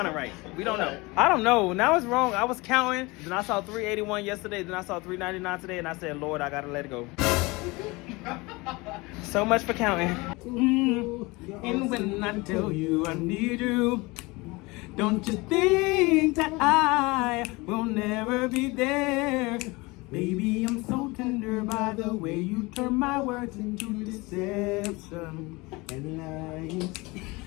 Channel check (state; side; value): quieter; right; 24.1 dB